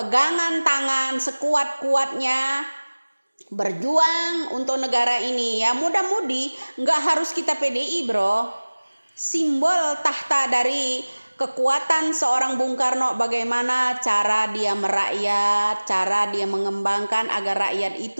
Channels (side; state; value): both; inverted; correlation -1.00